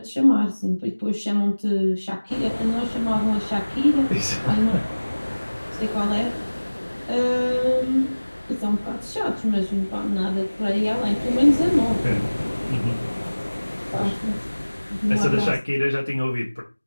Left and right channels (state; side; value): inverted; both; correlation -1.00